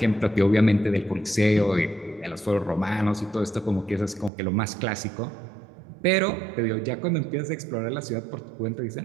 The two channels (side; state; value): left; drops out; at 4.3 s